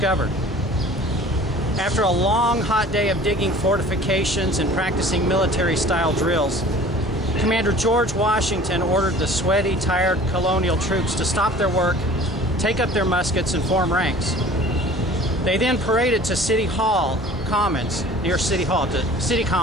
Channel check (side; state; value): both; normal; correlation 0.46